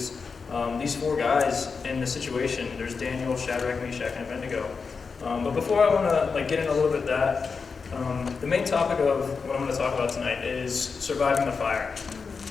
these four guys in the situation. There's Daniel, Shadrach, Meshach, and Abednego. But before I want to get in a little bit of that, the main topic of what I'm going to talk about tonight is surviving the fire.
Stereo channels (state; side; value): quieter; right; 5.1 dB